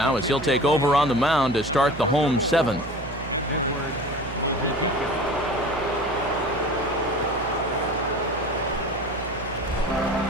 as he'll take over on the mound to start the home 7th. Edward Mujica.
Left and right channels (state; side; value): noise; right; hum, 12 dB below the sound